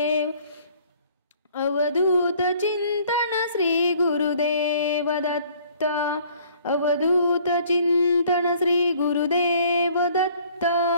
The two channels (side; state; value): both; inverted; correlation -0.57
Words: अवधूत चिंतन श्री गुरुदेव दत्त अवधूत चिंतन श्री गुरुदेव दत्त